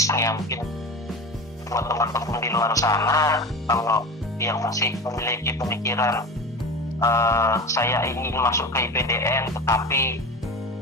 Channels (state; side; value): normal; both; correlation 0.29